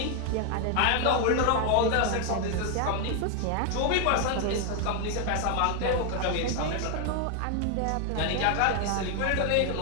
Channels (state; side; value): different; both; correlation 0.00